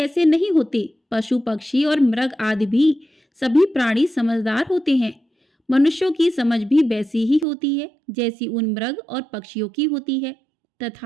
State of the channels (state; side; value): drops out; left; at 7.5 s